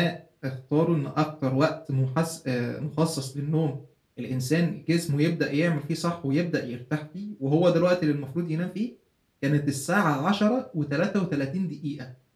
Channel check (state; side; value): identical; both; correlation 1.00